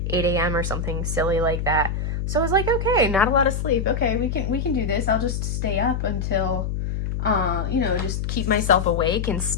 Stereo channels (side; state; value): left; noise; hum, 2 dB below the sound